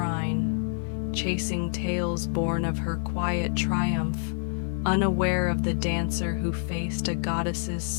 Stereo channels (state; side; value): silent; right; 59 dB below the other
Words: chasing tales born of her quiet triumph, unaware of the dancer who faced a goddess's